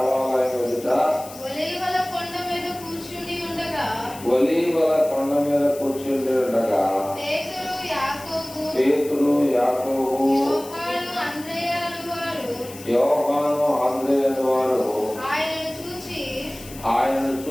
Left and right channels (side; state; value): left; noise; hiss, 16 dB below the sound